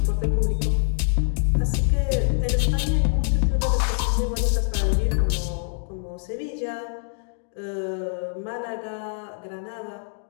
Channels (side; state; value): right; silent; digital silence